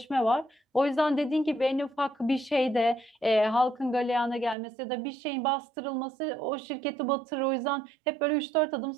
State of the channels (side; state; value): left; drops out; at 4.5 s